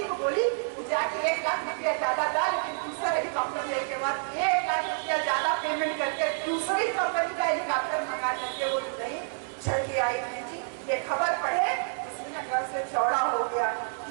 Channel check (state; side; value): silent; left; 59 dB below the other